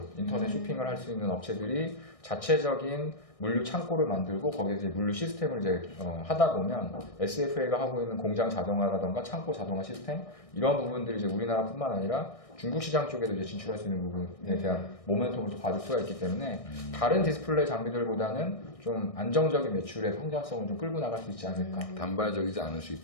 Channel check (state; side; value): late; right; 1.6 ms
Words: 인터넷 쇼핑을 할 수 있는 업체들이 자체적인 물류 창고를 만들고 거기에 이제 물류 시스템을 이제 하다 보면 SFA가 하고 있는 공장 자동화라던가 창고 자동화 시스템 이런 부분들이 이제 우리나라뿐만 아니라 중국 시장 쪽에도 이제 진출할 수 있는 부분에 대한 모멘텀을 또 받을 수가 있기 때문에 다른 디스플레이 장비들보다는 좀 안정적인 매출의 성장성을 좀 끌고 나갈 수 있지 않을까. 단발적이지 않을 수